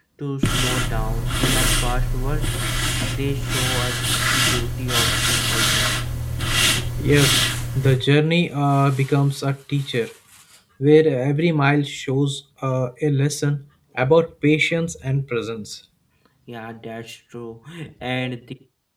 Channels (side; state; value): both; identical; correlation 1.00